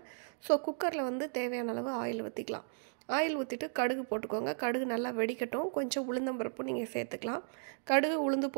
ஸோ குக்கரில் தேவையான அளவு ஆயில் ஊற்றிக்கலாம். ஆயில் ஊற்றிட்டு கடுகு போட்டுக்கோங்க. கடுகு நல்லா வெடிக்கட்டும். கொஞ்சம் உளுந்தம்பருப்பு நீங்கள் சேர்த்துக்கலாம். கடுகு உளுந்து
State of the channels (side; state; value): left; silent; digital silence